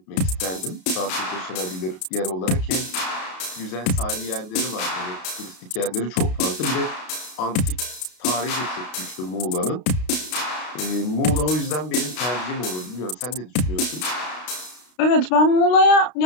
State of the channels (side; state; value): right; late; 32 ms